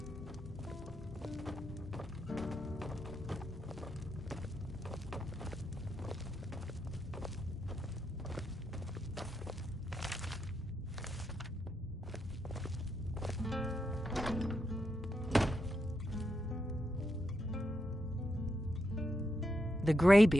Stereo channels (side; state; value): both; normal; correlation 0.83